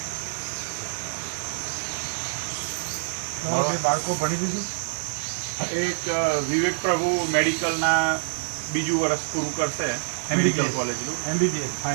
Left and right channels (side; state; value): left; silent; 61 dB below the other